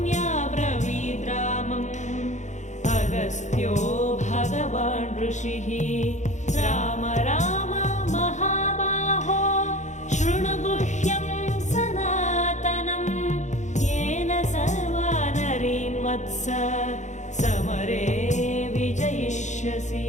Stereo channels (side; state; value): right; late; 0.35 ms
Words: ब्रवीद्रामम् अगस्त्यो भगवान् ऋषिः राम राम महाबाहो शृणु गुह्यं सनातनं येन सर्वा नरीन् वत्स समरे विजयिष्यसि